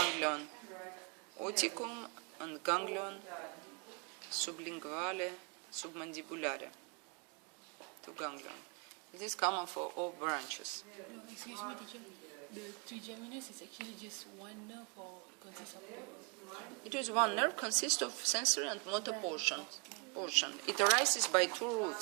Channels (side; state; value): left; quieter; 31.3 dB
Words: oticum and ganglion sublinguale, submandibulare. 2 ganglion. It is common for all branches. Excuse me, teacher. The trigeminus is actually just one nerve or consists of two? It is 1 nerve, consists of sensory and motor portion. It arises by 2